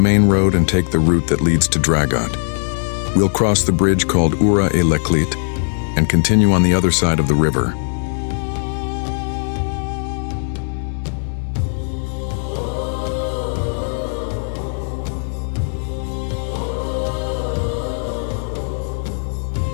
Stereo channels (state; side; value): silent; right; 60 dB below the other